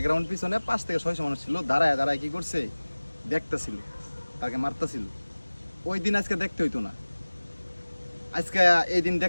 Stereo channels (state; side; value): inverted; both; correlation -1.00